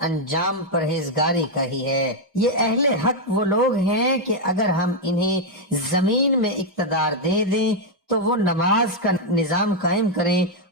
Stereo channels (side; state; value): both; normal; correlation 0.00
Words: انجام پرہیزگاری کا ہی ہے۔ یہ اہل حق وہ لوگ ہیں کہ اگر ہم انہیں زمین میں اقتدار دے دیں تو وہ نماز کا نظام قائم کریں